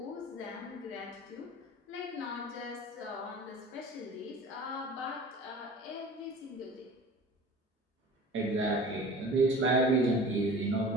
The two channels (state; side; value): normal; both; correlation 0.41